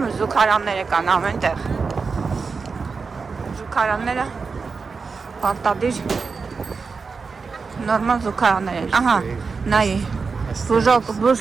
զուգարանները կան ամեն տեղ, զուգարանները պարտադիր նորմալ զուգարաններ են, ահա, նայի,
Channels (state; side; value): quieter; left; 4.9 dB